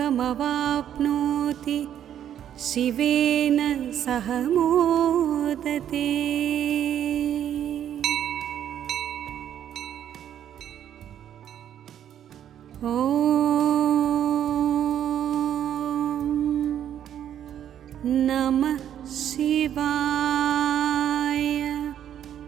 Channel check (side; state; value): left; quieter; 10.2 dB